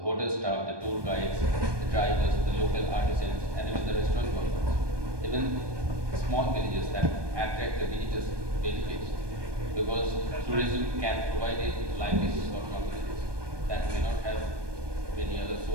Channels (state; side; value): late; left; 1.2 ms